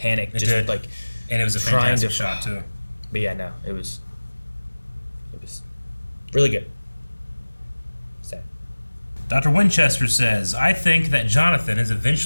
It just did. Like, and it was a fantastic shot too. But yeah, no, it was really good. Sad. Dr. Winchester says, I think that Jonathan is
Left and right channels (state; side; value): inverted; both; correlation -1.00